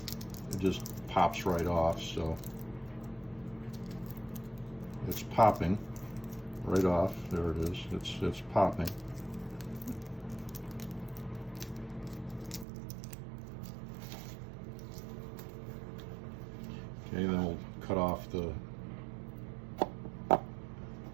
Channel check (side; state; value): left; drops out; at 12.7 s